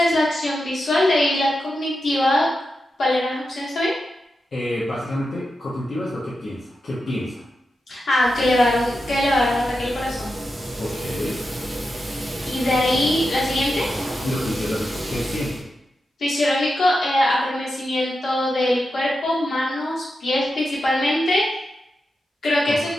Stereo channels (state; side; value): normal; both; correlation 0.89